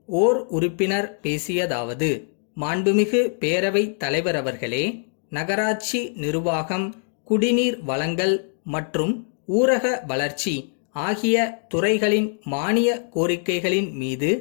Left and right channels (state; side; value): silent; right; 63 dB below the other